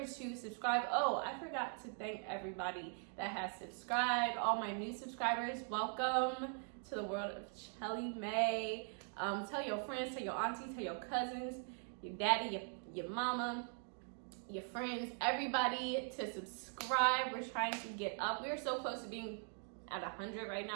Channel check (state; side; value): silent; left; 50 dB below the other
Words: to subscribe. Oh, I forgot to thank everybody that has subscribed. All my new subscribers, welcome to the world of Chelly May. Tell your friends, tell your aunties, tell your cousins, your daddy, your mama, your friends, everybody to subscribe. We're trying to get up. We're so close to being at 100 right